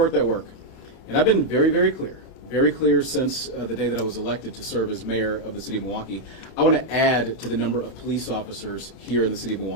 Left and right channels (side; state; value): right; late; 31 ms